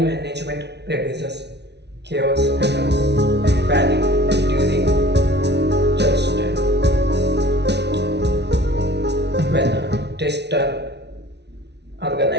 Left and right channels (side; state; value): left; late; 0.50 ms